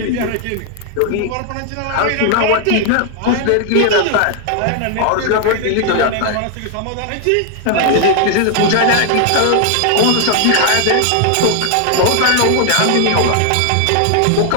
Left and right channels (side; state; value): both; different; correlation 0.00